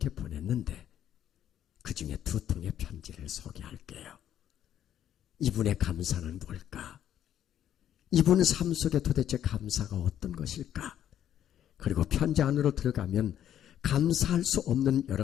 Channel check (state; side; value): quieter; right; 10.6 dB